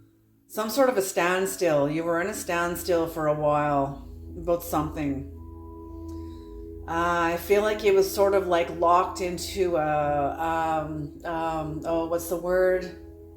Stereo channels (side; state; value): both; identical; correlation 1.00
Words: Some sort of a standstill. You were in a standstill for a while about something. I feel like it was sort of like locked into what's the word?